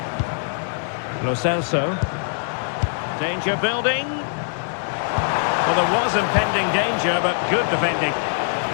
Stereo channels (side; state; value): right; silent; 64 dB below the other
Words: Lo Celso. Danger building. Well, there was impending danger, but good defending.